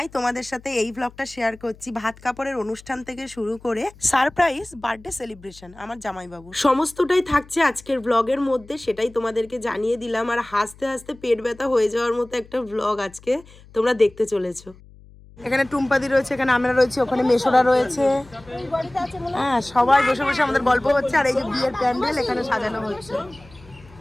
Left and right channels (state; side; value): noise; left; hum, 23 dB below the sound